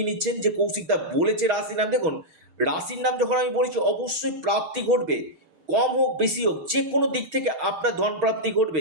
নিচ্ছেন যে কৌশিকদা বলেছে রাশির নাম। দেখুন, রাশির নাম যখন আমি বলেছি, অবশ্যই প্রাপ্তি ঘটবে, কম হোক বেশি হোক, যে কোনো দিক থেকে আপনার ধন প্রাপ্তি ঘটবে।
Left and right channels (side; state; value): left; late; 6.3 ms